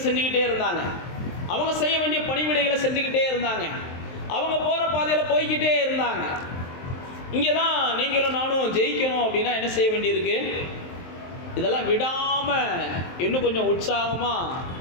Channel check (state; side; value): late; right; 23 ms